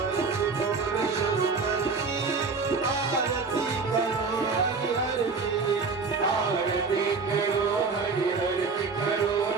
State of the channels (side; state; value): left; quieter; 4.6 dB